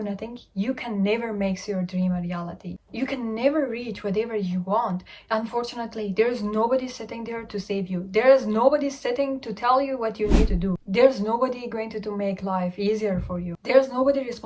nothing, you can never make your dream a reality. You can never reach whatever you want. Unfortunately, there is nobody sitting there to save you. There is nobody sitting to tell you what you need to do. There's nobody going to make life easier for you. There's nobody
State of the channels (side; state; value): both; identical; correlation 1.00